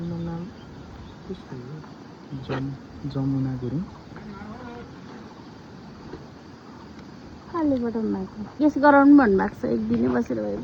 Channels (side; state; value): both; identical; correlation 1.00